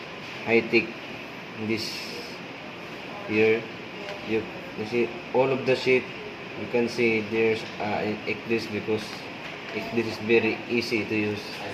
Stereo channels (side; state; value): both; identical; correlation 1.00